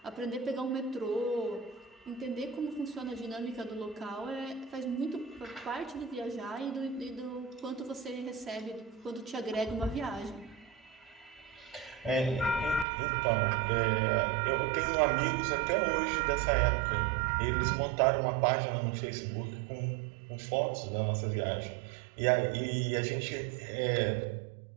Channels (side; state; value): left; drops out; at 12.9 s